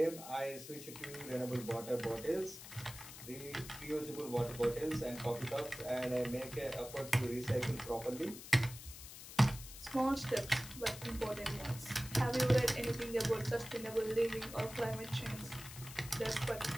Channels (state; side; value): noise; left; hiss, 13 dB below the sound